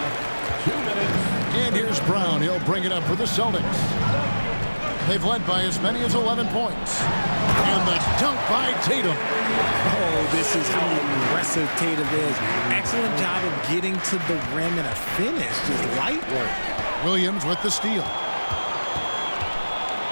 2 minutes. And here's Brown. He'll bring it up for the Celtics. They've led by as many as 11 points. And the dunk by Tatum. Oh, this is how aggressive Tatum is. Excellent job of getting to the rim and a finish. Just light work. Williams with the steal.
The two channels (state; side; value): inverted; both; correlation -1.00